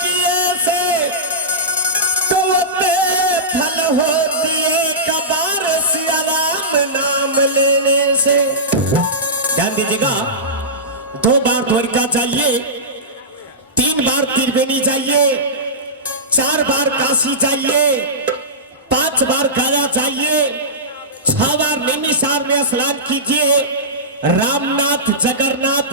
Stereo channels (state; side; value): normal; both; correlation -0.18